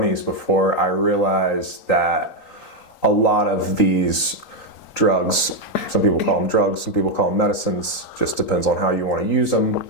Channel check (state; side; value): late; right; 3.8 ms